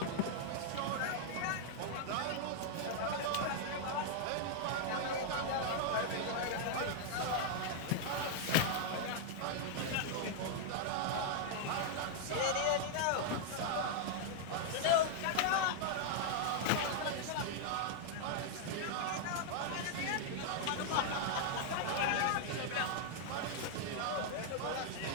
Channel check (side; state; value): both; different; correlation 0.00